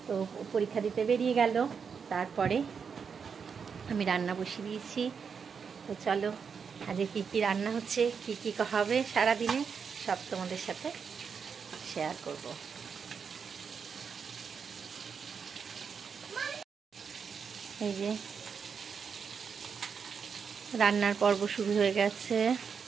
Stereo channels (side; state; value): left; quieter; 6.2 dB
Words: তো পরীক্ষা দিতে বেরিয়ে গেল, তারপরে আমি রান্না বসিয়ে দিয়েছি। তো চলো আজকে কী কী রান্না হচ্ছে, কী কী হবে সারাদিনে, সব তোমাদের সাথে শেয়ার করব। এই যে রান্নার পর্ব শুরু হয়ে গেছে,